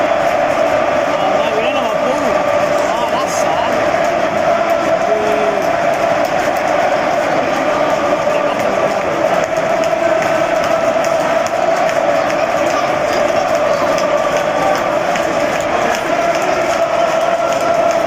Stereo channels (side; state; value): both; identical; correlation 1.00